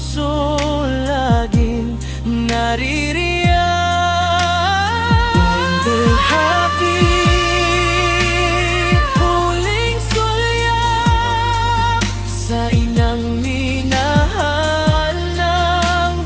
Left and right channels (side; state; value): both; identical; correlation 1.00